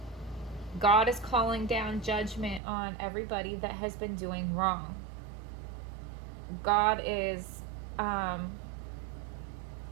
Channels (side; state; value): left; drops out; at 2.6 s